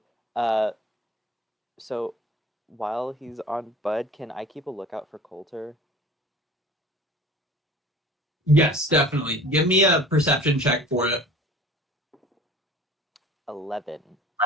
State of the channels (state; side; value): normal; both; correlation 0.44